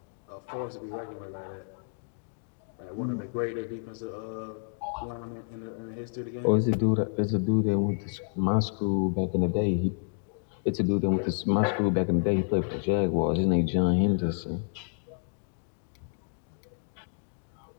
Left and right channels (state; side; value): silent; right; digital silence